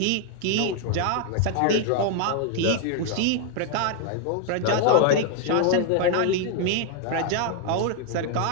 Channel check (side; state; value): both; different; correlation 0.00